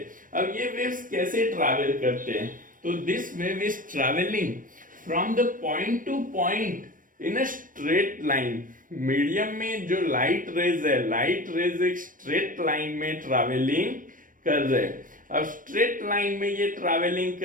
अब ये वेव्स कैसे ट्रैवल करते हैं? तो this wave is travelling from the point two point in a straight line. Medium में जो लाइट रेज है, लाइट रेज एक स्ट्रेट लाइन में ट्रैवलिंग कर रहे। अब स्ट्रेट लाइन में ये ट्रैवलिंग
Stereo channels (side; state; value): left; late; 0.39 ms